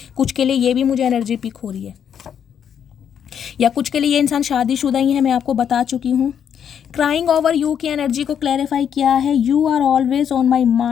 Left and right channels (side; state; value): right; quieter; 8.4 dB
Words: कुछ के लिए ये भी मुझे एनर्जी पिक हो रही है, या कुछ के लिए ये इंसान शादीशुदा ही है, मैं आपको बता चुकी हूँ। क्राइंग ओवर यू की एनर्जी को क्लैरिफाई किया है you are always on my